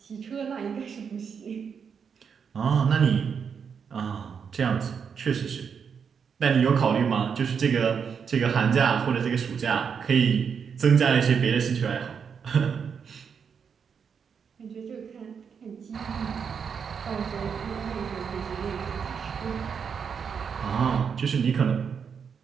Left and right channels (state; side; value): quieter; left; 6.7 dB